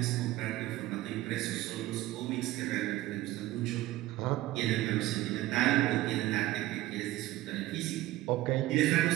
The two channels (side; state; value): left; quieter; 16.4 dB